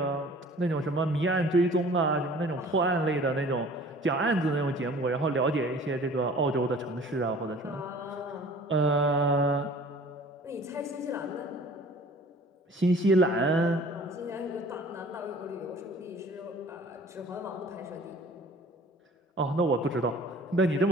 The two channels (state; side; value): normal; both; correlation 0.48